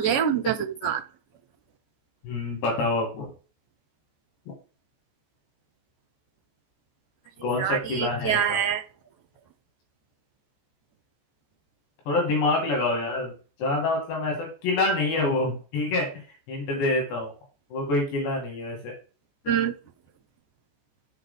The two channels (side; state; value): right; late; 14 ms